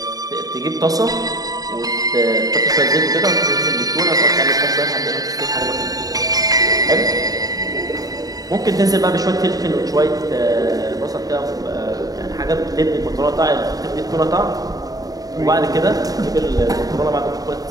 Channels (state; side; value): late; left; 0.18 ms